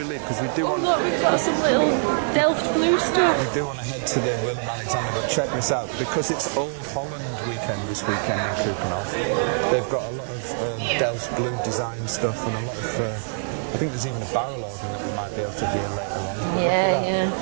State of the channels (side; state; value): left; silent; digital silence